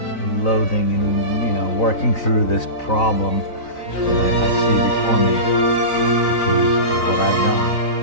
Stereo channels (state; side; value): late; right; 3.9 ms